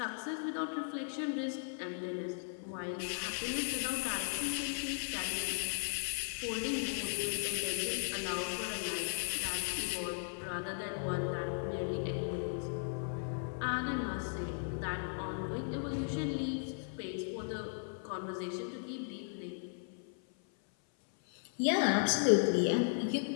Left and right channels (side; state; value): right; silent; 53 dB below the other